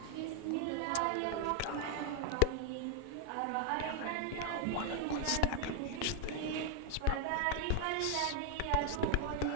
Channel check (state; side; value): different; both; correlation 0.00